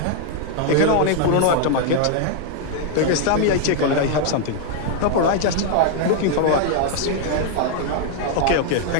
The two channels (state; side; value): different; both; correlation 0.00